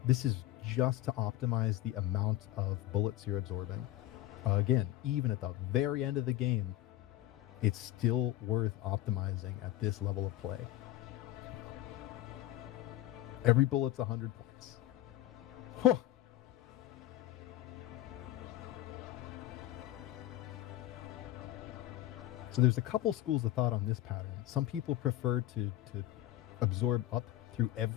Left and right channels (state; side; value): quieter; right; 14.6 dB